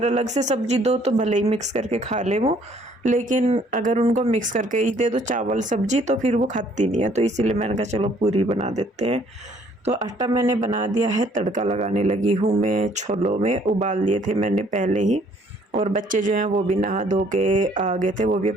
अलग से सब्जी दो तो भले ही मिक्स करके खा ले वो, लेकिन अगर उनको मिक्स करके ही दे दो चावल सब्जी तो फिर वो खाती नहीं है। तो इसीलिए मैंने कहा चलो पूरी बना देते हैं। तो आटा मैंने बना दिया है, तड़का लगाने लगी हूँ मैं। छोलों में उबाल लिए थे मैंने पहले ही, और बच्चे जो हैं वो भी नहा धो के आ गए थे, वो भी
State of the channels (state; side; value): normal; both; correlation 0.62